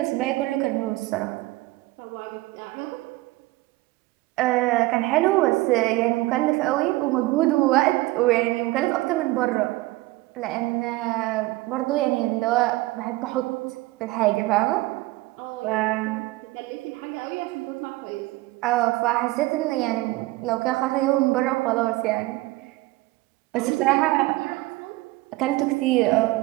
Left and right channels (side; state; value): left; quieter; 19.8 dB